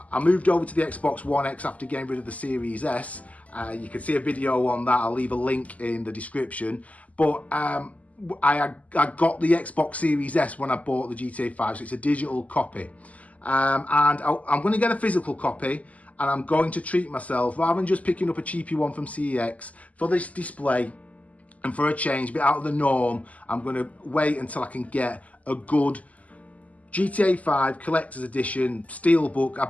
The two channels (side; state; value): right; late; 0.072 ms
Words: moved over to the Xbox One X after getting rid of the Series S. You can see a video on that. I'll leave a link in the description. But I got the Xbox Series S when I bought the GTA 5, so it's a digital copy. And I'm going to get a physical copy, and I'm going to treat myself, rather than just picking up a cheapy one from CEX, for this display and for a change, a bit out of the norm. I'm going to wait until I can get a good GTA 5 Collector's Edition Steelbook, I